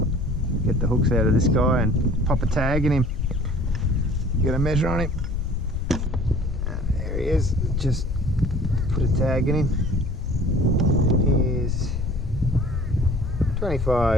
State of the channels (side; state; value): left; noise; rumble, 2 dB below the sound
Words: get the hooks out of this guy and pop a tag in him. Get a measure on him. And there he is. Just put a tag in him. He's